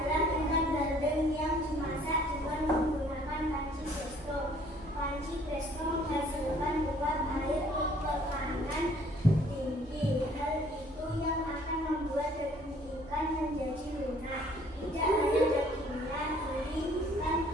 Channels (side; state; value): both; normal; correlation 0.59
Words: ikan bandeng yang dimasak dengan menggunakan panci presto. Panci presto menghasilkan uap air tekanan tinggi. Hal itu yang akan membuat daging ikan menjadi lunak. Tidak hanya dagingnya, duri ikan